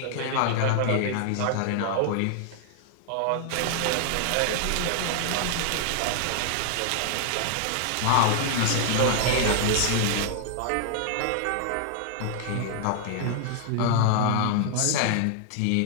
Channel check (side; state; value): both; different; correlation 0.00